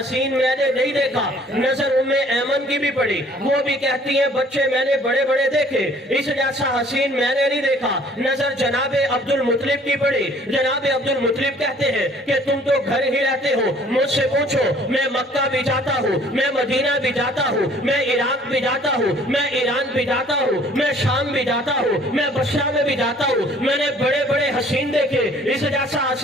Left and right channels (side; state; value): both; normal; correlation 0.56